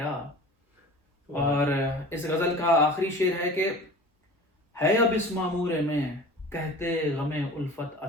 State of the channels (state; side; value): normal; both; correlation 0.40